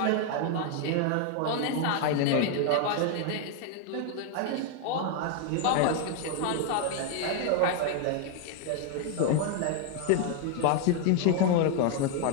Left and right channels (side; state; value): both; different; correlation 0.00